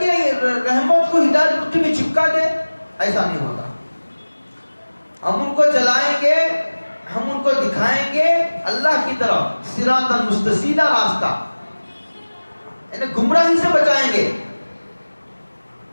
رحمت کو ہدایت مٹھی میں چپکا دے؟ ایسا نہیں ہوگا. ہم ان کو چلائیں گے، ہم ان کو دکھائیں گے اللہ کی طرف، صراطا مستقیما، راستہ، یعنی گمراہی سے بچائیں گے.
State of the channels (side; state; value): both; inverted; correlation -1.00